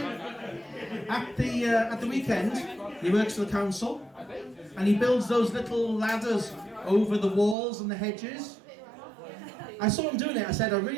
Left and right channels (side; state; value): left; drops out; at 7.6 s